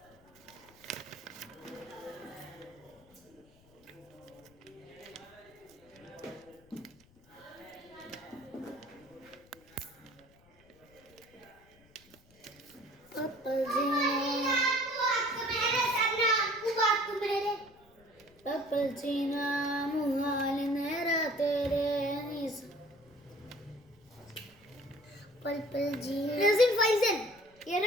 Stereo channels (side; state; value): left; noise; rumble, 28 dB below the sound